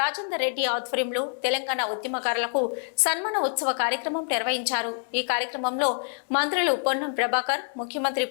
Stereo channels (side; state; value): right; silent; 61 dB below the other